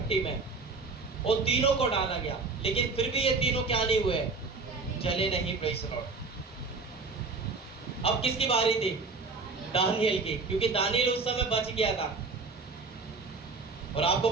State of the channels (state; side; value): quieter; left; 4.0 dB